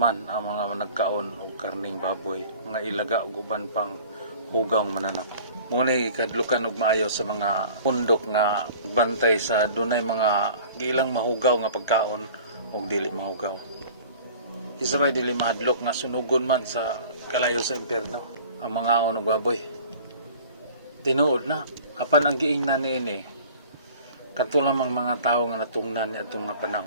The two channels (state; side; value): inverted; both; correlation -0.46